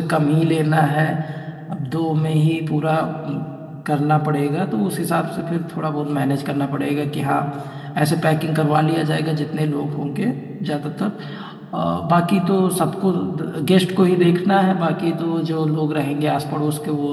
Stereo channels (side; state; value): both; identical; correlation 1.00